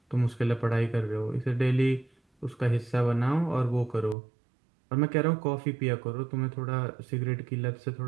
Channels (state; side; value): drops out; left; at 4.2 s